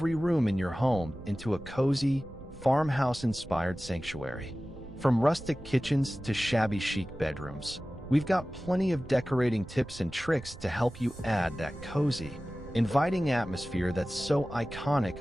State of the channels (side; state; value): right; noise; rumble, 17 dB below the sound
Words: room in your home into a cozy, farmhouse-inspired sanctuary. From rustic kitchens to shabby chic bedrooms, we've got plenty of decorating tips and tricks to help you add that cozy, inviting atmosphere that's so iconic